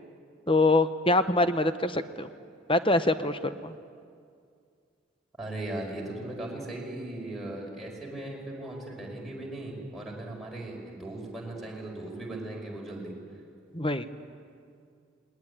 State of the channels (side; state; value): both; normal; correlation 0.47